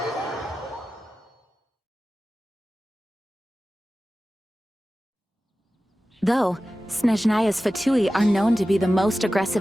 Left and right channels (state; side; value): normal; both; correlation 0.95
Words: Though, Snezhnaya's Fatui are known to be the most